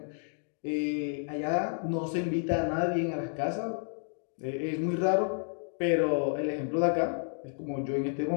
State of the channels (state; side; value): silent; right; digital silence